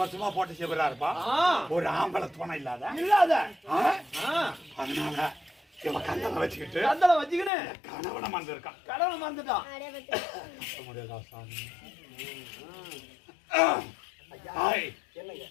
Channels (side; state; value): right; drops out; at 7.5 s